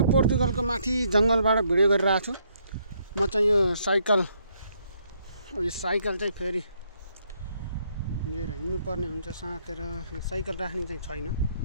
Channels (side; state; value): both; inverted; correlation -0.71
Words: पोर्तुगलको माथि जंगलबाट भिडियो गरिरहेको छु। म चाहिँ यो साइकल चाहिँ फेरि लिएर हिँड्नु पर्ने हुन्छ साथेर साइकल राख्ने चाहिँ छैन।